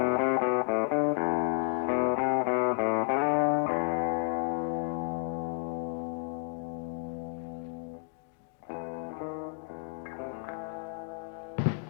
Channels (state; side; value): silent; right; digital silence